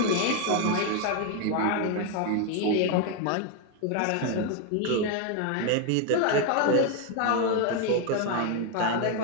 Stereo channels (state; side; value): different; both; correlation 0.01